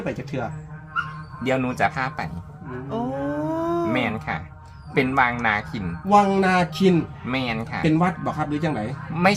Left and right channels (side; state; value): both; identical; correlation 1.00